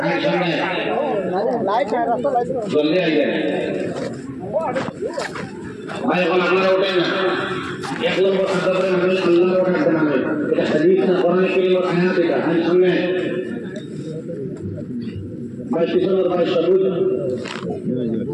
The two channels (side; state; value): both; identical; correlation 1.00